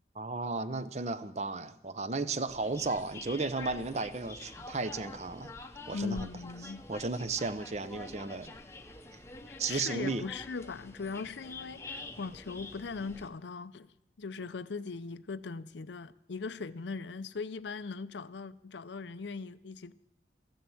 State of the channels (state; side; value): normal; both; correlation 0.21